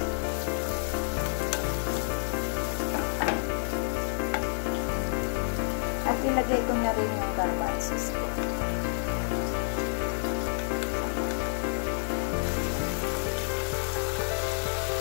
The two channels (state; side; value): silent; right; digital silence